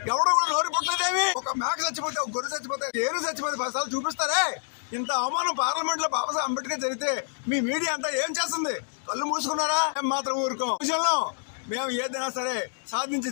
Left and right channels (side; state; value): right; silent; digital silence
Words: ఎవడో కూడా నోరి పుట్టలేదేమి. ఒక మేక చచ్చిపోతే, ఒక గొర్రె చచ్చిపోతే, ఏరు చచ్చిపోతే 10 సార్లు చూపిస్తారే. ఇంత అవమానం పార్లమెంట్ లో బాబాసాహెబ్ అంబేద్కర్ జరిగితే మీ మీడియా అంతా ఏం చేస్తుంది? కళ్ళు మూసుకున్నారా? మాత్రం ఊరుకోం. విషయంలో మేము ఏదైనా సరే సాధించి